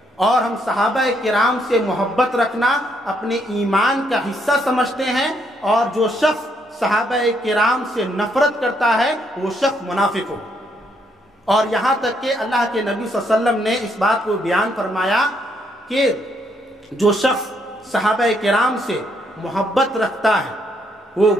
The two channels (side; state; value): both; normal; correlation 0.73